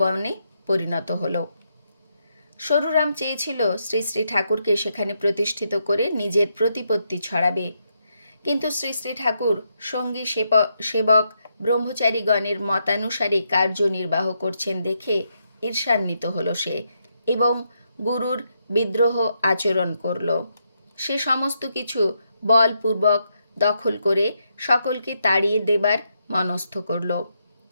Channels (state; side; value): inverted; both; correlation -0.80